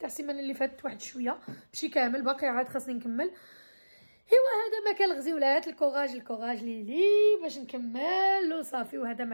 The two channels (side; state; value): both; inverted; correlation -1.00